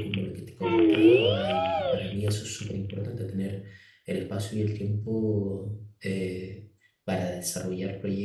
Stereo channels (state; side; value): identical; both; correlation 1.00